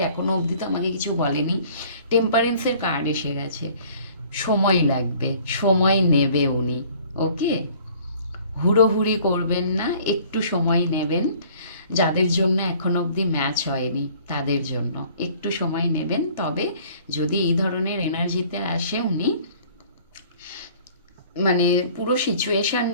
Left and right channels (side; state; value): both; inverted; correlation -0.53